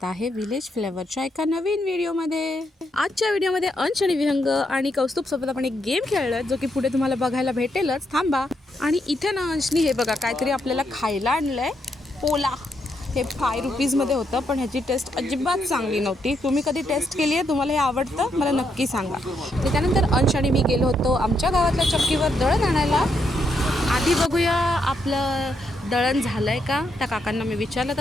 आहे विलेज फ्लेवरच्या एका नवीन व्हिडिओमध्ये. आजच्या व्हिडिओमध्ये अंश आणि विहंग आणि कौस्तुभ सोबत आपण एक गेम खेळलोय जो की पुढे तुम्हाला बघायला भेटेलच. थांबा. आणि इथे ना अंशनी हे बघा काहीतरी आपल्याला खायला आणलंय. पोला हे 5 रुपीजमध्ये होतं, पण ह्याची टेस्ट अजिबात चांगली नव्हती. तुम्ही कधी टेस्ट केली आहे? तुम्हाला हे आवडतं? मला नक्की सांगा. त्यानंतर अंश आणि मी गेलो होतो आमच्या गावातल्या चक्कीवर दळण आणायला. आधी बघूया आपलं दळण झालं आहे का. त्या काकांना मी विचारलं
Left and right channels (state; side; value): normal; both; correlation 0.78